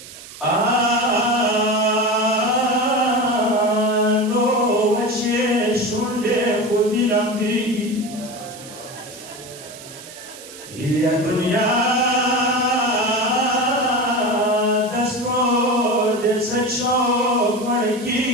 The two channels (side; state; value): right; noise; hiss, 16 dB below the sound